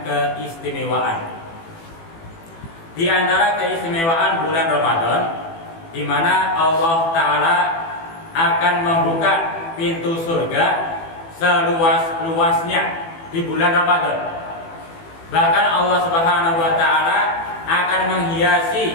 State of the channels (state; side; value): late; right; 18 ms